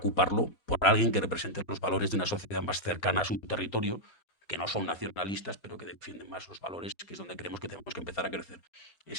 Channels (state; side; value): late; right; 4.3 ms